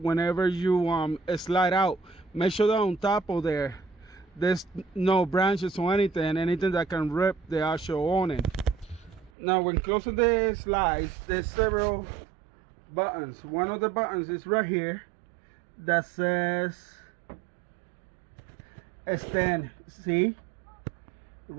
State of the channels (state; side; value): drops out; left; at 9.3 s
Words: you slide out. Make sure that on top of there's no branches or anything that can rip the actual awning. Now when closing the slides, there's several buttons. One of the buttons is right here that says extend. See,